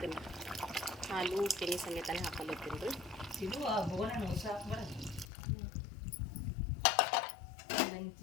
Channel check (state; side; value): drops out; right; at 5.2 s